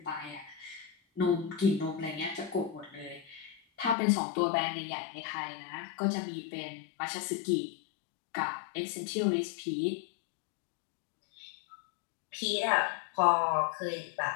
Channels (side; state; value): right; drops out; at 4.0 s